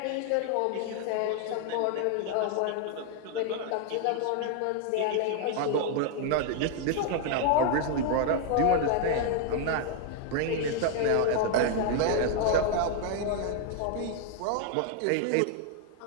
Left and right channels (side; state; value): both; different; correlation 0.00